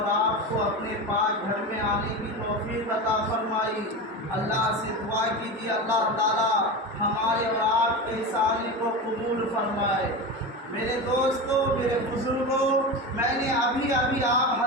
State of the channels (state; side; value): normal; both; correlation 0.24